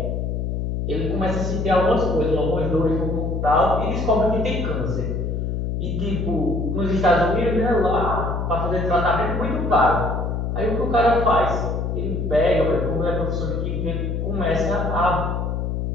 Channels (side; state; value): left; noise; hum, 1 dB below the sound